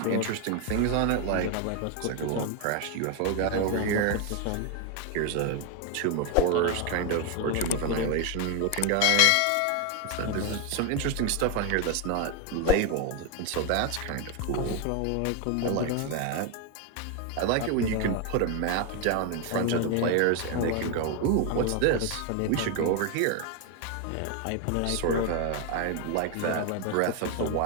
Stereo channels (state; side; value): different; both; correlation 0.01